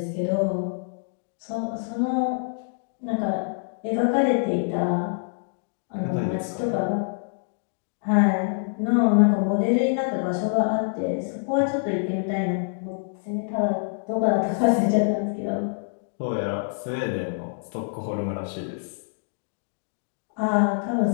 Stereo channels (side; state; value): right; silent; digital silence